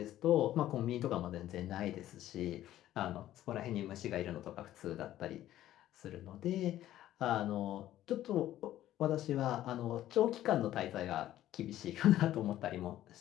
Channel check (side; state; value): right; quieter; 13.3 dB